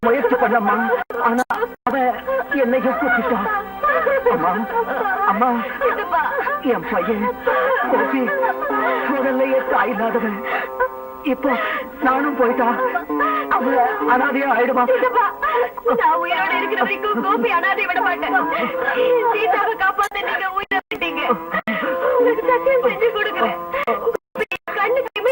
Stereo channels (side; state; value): both; identical; correlation 1.00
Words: முயற்சி பண்ணம்மா. ஆனா அவ என்னையும் கூப்பிட்டான். அம்மா அம்மா, என் பையன் கோபி முதல்லையே தாய் இல்லாதவன். இப்போ நானும் போயிட்டா அவ அனாதையா ஆயிடுமா? நான் உயிரோட இருக்கிற வரைக்கும் கோபி அனாதை விட மாட்டேன். சீதாவை காப்பாத்த நீங்க உயிரை விட்டீங்க. உங்களுக்கு சத்தியம் செஞ்சு கொடுக்குறேன். கண்ணுக்கு